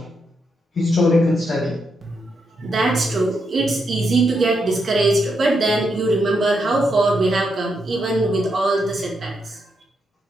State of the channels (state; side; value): normal; both; correlation 0.81